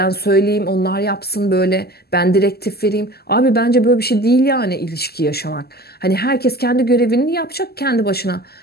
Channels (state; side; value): late; right; 0.46 ms